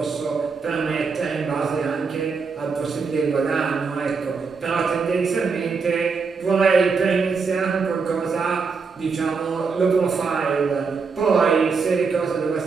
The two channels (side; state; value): left; quieter; 5.0 dB